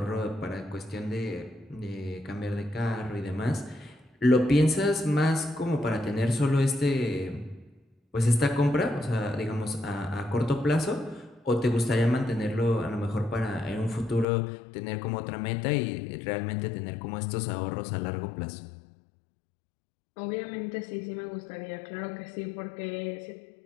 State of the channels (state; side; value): drops out; right; at 14.2 s